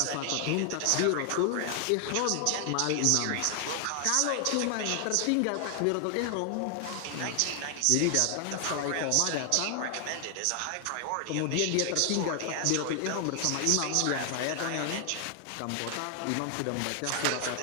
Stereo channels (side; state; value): both; different; correlation 0.00